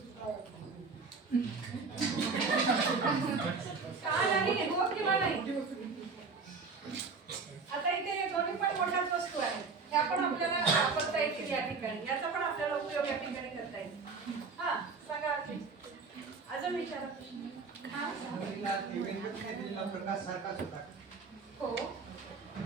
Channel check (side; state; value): left; quieter; 4.7 dB